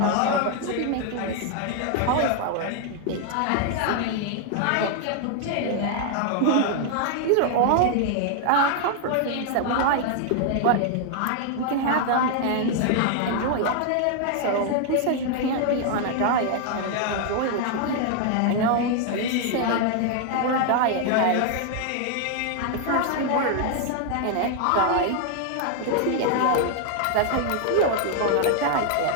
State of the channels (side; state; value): both; different; correlation 0.00